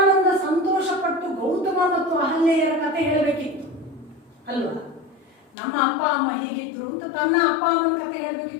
ಸಂತೋಷಪಟ್ಟು ಗೌತಮ ಮತ್ತು ಅಹಲ್ಯೆಯರ ಕಥೆ ಹೇಳಬೇಕಿತ್ತು ಅಲ್ವಾ? ನಮ್ಮ ಅಪ್ಪ ಅಮ್ಮ ಹೀಗಿದ್ರು ಅಂತ ತನ್ನ ಅಪ್ಪ ಅಮ್ಮನ ಕಥೆ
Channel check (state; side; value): drops out; right; at 5.5 s